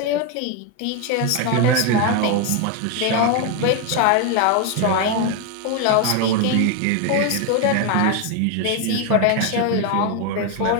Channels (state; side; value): different; both; correlation 0.02